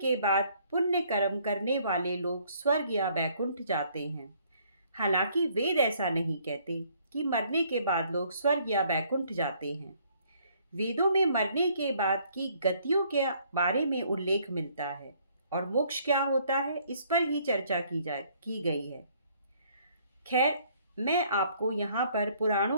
बाद पुण्य कर्म करने वाले लोग स्वर्ग या बैकुंठ जाते हैं। हालांकि वेद ऐसा नहीं कहते कि मरने के बाद लोग स्वर्ग या बैकुंठ जाते हैं। वेदों में मरने के बाद की गतियों के बारे में उल्लेख मिलता है और मोक्ष क्या होता है इस पर ही चर्चा की गई है। खैर, मैं आपको यहाँ पर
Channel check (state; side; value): inverted; both; correlation -0.64